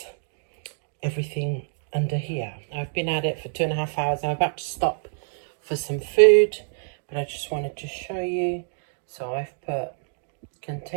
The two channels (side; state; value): left; silent; digital silence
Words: everything under here. I've been at it for 2.5 hours. I'm about to stop for some food, but I just wanted to show you. So I've put